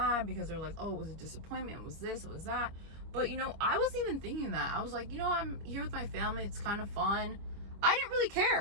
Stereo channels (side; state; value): left; late; 25 ms